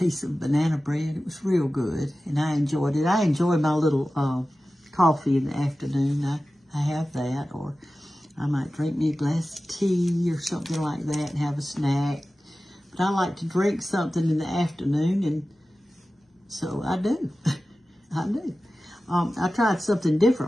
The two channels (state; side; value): normal; both; correlation 0.95